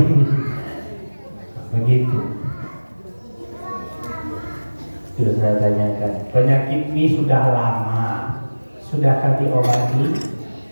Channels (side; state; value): both; inverted; correlation -1.00